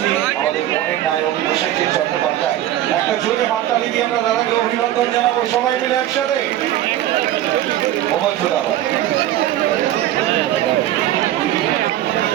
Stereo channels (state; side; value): quieter; left; 13.1 dB